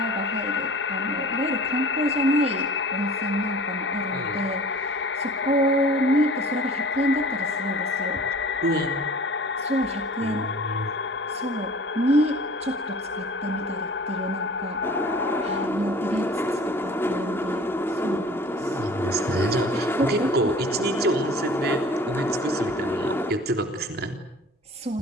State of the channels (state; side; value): normal; both; correlation 0.45